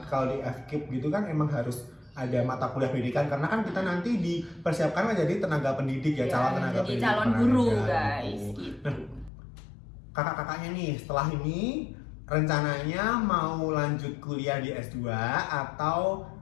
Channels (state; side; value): drops out; right; at 9.3 s